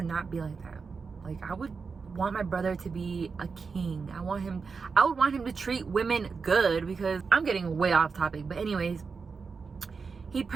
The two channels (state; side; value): quieter; left; 5.1 dB